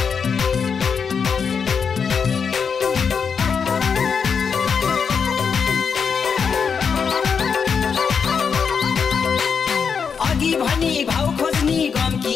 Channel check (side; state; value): right; quieter; 6.3 dB